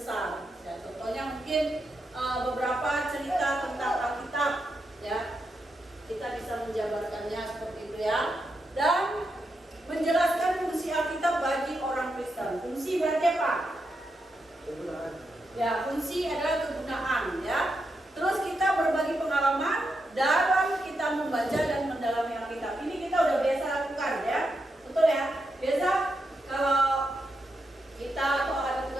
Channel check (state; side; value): normal; both; correlation 0.84